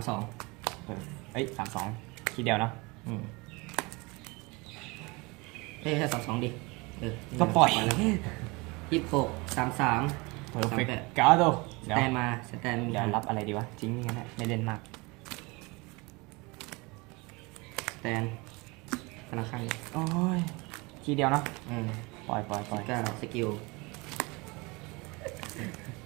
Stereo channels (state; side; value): quieter; left; 25.8 dB